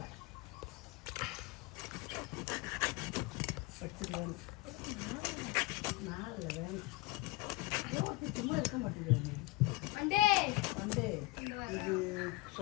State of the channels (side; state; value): right; quieter; 21.4 dB